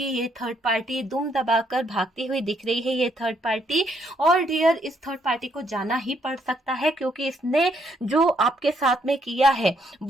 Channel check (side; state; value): both; normal; correlation 0.72